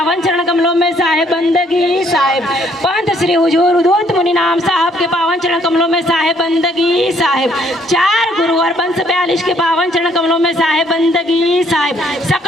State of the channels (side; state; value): both; normal; correlation 0.65